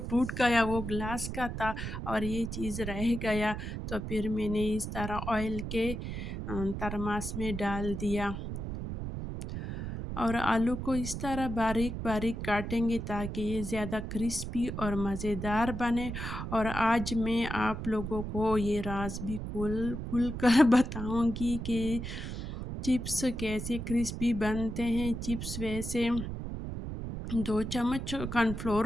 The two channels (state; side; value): noise; right; rumble, 6 dB below the sound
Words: गया, वो ग्लास का था और ये चीज़ रह गया। तो फिर मैंने इस तरह ऑयल के थर्मास में डाल दिया। और आलू को इस तरह बारीक बारीक काटेंगे ताकि ये ज़्यादा क्रिस्पी और मज़ेदार बने। और आज मैं आप लोगों को ये राज भी खुल खुल कर बताऊंगी कि चिप्स कैसे क्रिस्पी बनते हैं। चिप्स वैसे 2 चम्मच